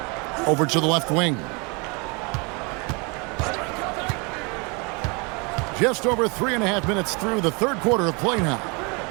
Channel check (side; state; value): left; quieter; 30.4 dB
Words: Over to the left wing. Just over 3.5 minutes through the third quarter of play now.